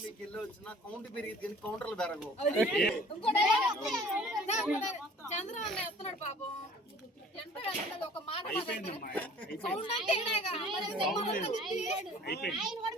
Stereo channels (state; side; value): normal; both; correlation 0.50